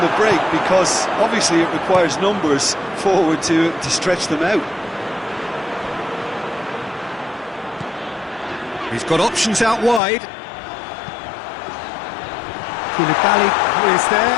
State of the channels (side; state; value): right; drops out; at 10.0 s